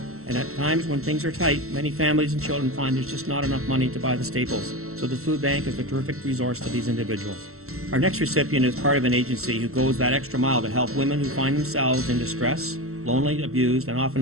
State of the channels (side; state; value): left; late; 0.63 ms